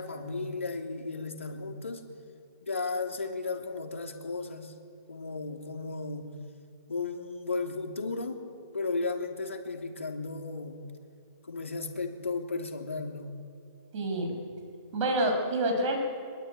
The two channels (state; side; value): inverted; both; correlation -0.56